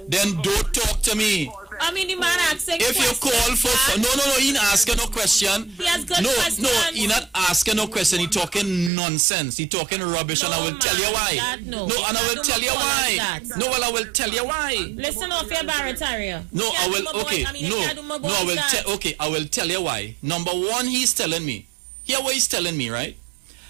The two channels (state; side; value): drops out; left; at 8.9 s